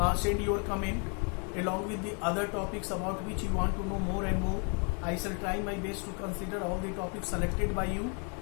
send your comment along with the other topics about which you want to know more and more. I shall try my best to consider all the topics selected by you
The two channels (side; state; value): right; quieter; 37.3 dB